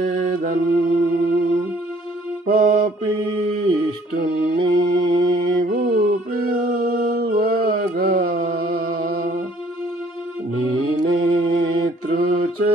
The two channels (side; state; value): both; normal; correlation 0.59